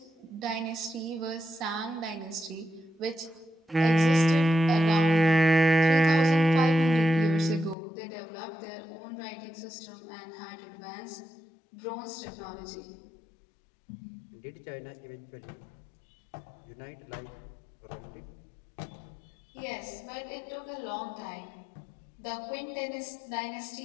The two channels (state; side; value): drops out; right; at 7.8 s